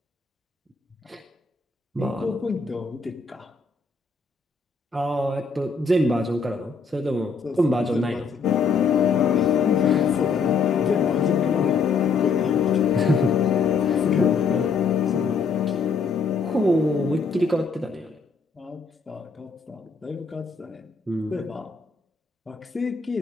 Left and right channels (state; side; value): quieter; right; 4.9 dB